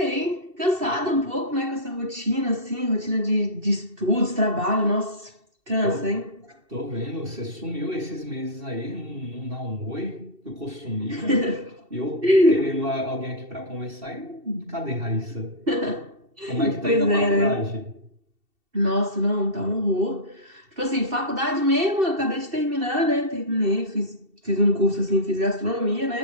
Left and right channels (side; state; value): left; late; 2.7 ms